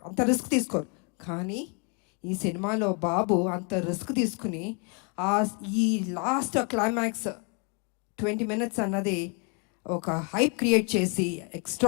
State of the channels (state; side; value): quieter; right; 36.5 dB